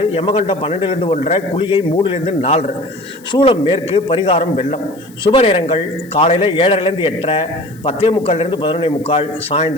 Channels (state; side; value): noise; left; hiss, 26 dB below the sound